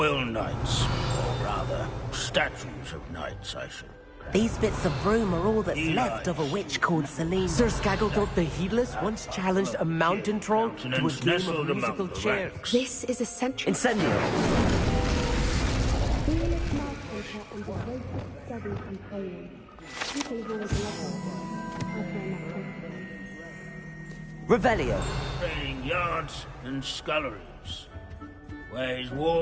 knights, or rather, statues of knights, I should. These bits of broom are all that's left of a witch called Celine. Sir Skagglethrop the Heedless once challenged a mountain troll to a game of musical chairs. This is essential. Incendio. Revelio. Training yards and sculleries, where his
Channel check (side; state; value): both; identical; correlation 1.00